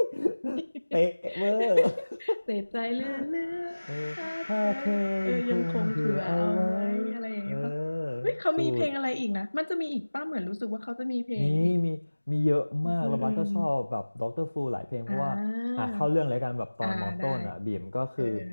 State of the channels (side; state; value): both; inverted; correlation -1.00